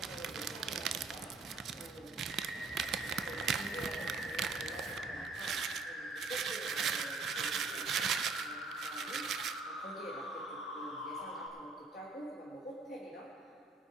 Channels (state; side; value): quieter; left; 4.0 dB